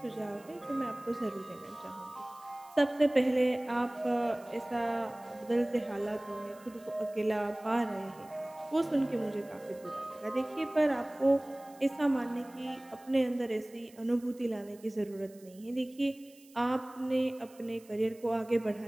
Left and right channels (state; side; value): noise; right; hiss, 25 dB below the sound